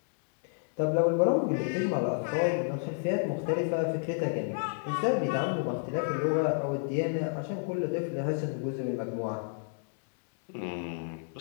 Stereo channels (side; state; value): right; silent; digital silence